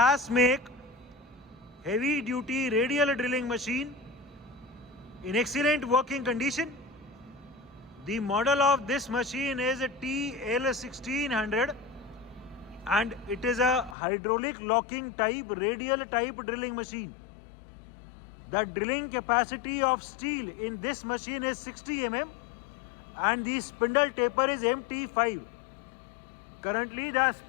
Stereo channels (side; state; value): right; drops out; at 14.0 s